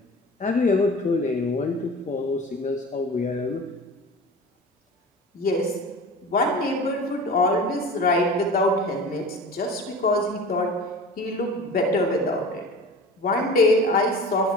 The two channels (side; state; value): both; normal; correlation 0.36